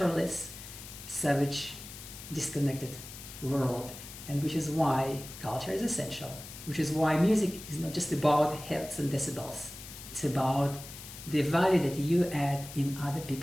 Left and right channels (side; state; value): left; noise; hiss, 13 dB below the sound